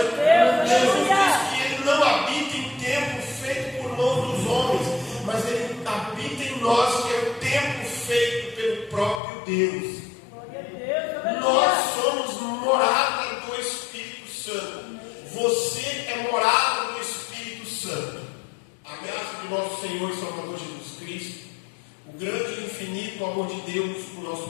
Jesus diz que ele não habita em templo feito por mão dos homens, mas ele habita em nós, que é o templo feito pelo próprio Deus. Nós somos morada do Espírito Santo. Você é morada do Espírito Santo. A graça de nosso Senhor e Salvador Jesus Cristo, o grande e infinito amor de Deus, o nosso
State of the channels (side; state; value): right; drops out; at 9.2 s